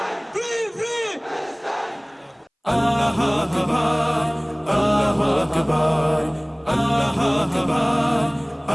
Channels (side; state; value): both; identical; correlation 1.00